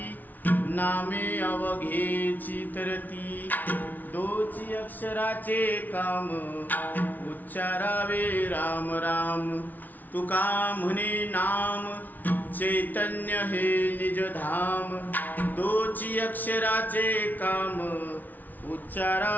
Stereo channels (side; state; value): right; late; 0.081 ms